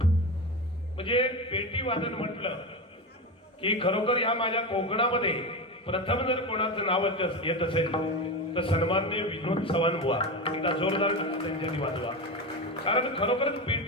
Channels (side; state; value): both; normal; correlation 0.20